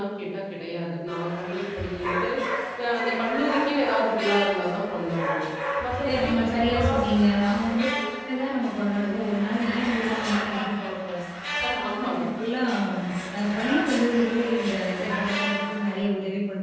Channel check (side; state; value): both; identical; correlation 1.00